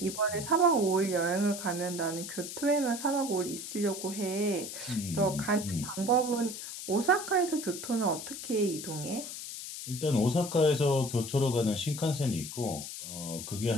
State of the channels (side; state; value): left; noise; hiss, 8 dB below the sound